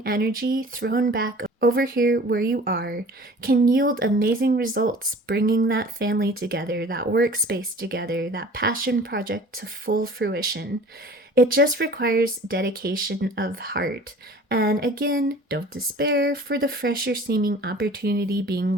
energy thrown back over here where you are can yield amazing results, bringing that family together, that workspace together, that passion project to full fruition. It just requires dedication of heart. And again, don't despair for the fresher seeming opportunity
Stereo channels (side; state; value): both; normal; correlation 0.45